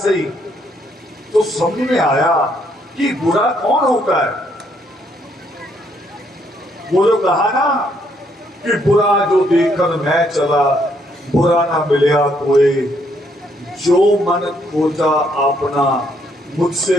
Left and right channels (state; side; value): normal; both; correlation 0.71